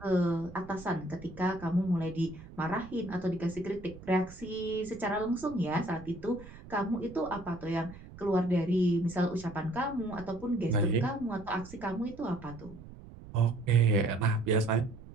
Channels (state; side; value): noise; right; rumble, 17 dB below the sound